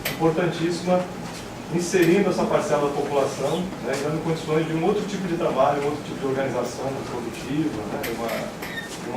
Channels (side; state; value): both; identical; correlation 1.00